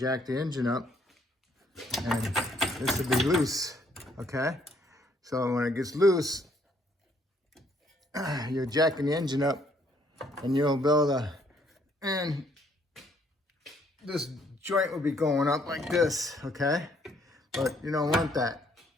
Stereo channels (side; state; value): both; normal; correlation 0.67